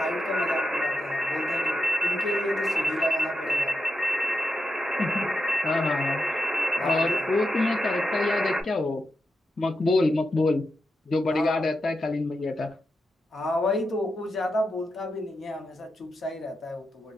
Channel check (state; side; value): normal; both; correlation 0.86